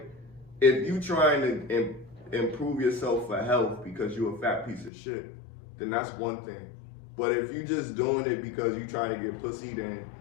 if you trying to improve yourself for health because you're a fat piece of shit, then that's one thing. But if you just doing it because you trying to get pussy, then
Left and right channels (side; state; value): right; drops out; at 4.9 s